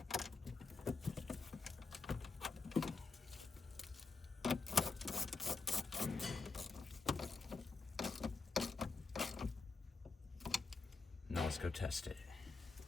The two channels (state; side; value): quieter; right; 4.2 dB